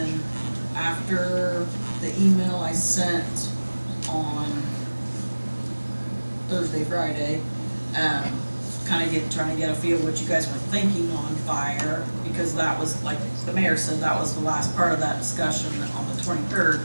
after the email I sent on Thursday, Friday, trying to get a feel of what you guys were thinking on fire, because that was, like the mayor said, that was the last part of that discussion on the 23rd,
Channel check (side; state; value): both; inverted; correlation -1.00